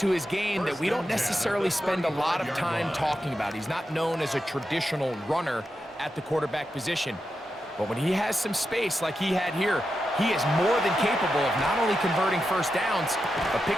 his game that we don't necessarily spend a lot of time talking about. He's not known as a traditional runner at the quarterback position. But when he has some space like he had here, he is more than capable of not only converting first downs, but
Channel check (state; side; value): normal; both; correlation 0.88